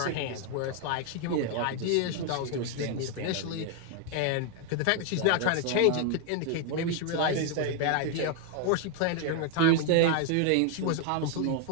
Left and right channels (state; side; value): different; both; correlation 0.00